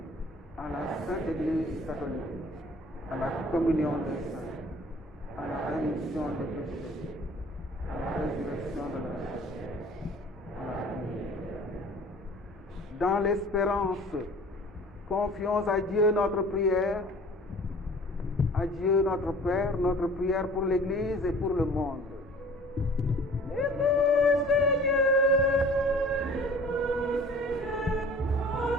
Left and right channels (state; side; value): normal; both; correlation 0.48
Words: à la Sainte Église catholique, à la communion des saints, à la rémission des péchés, à la résurrection de la chair, à la vie. Dans l'espérance, confions à Dieu notre prière, à Dieu notre Père, notre prière pour l'Église et pour le monde. Écoute Seigneur,